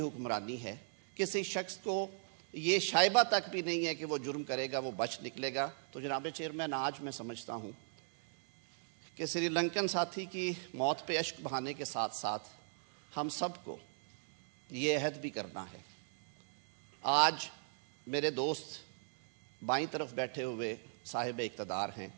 ہے. کسی شخص کو یہ شائبہ تک بھی نہیں ہے کہ وہ جرم کرے گا وہ بچ نکلے گا. تو جناب چیئرمین، آج میں سمجھتا ہوں کہ سری لنکن ساتھی کی موت پہ اشک بہانے کے ساتھ ساتھ ہم سب کو یہ عہد بھی کرنا ہے. آج میرے دوست بائیں طرف بیٹھے ہوئے صاحب اقتدار ہیں،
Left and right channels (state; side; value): silent; left; 53 dB below the other